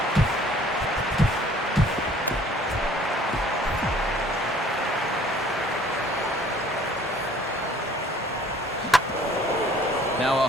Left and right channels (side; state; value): both; normal; correlation 0.55